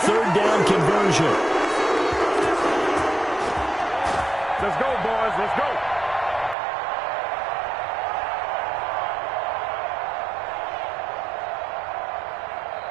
down conversion. Let's go, boys. Let's go.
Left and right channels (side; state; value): left; drops out; at 6.6 s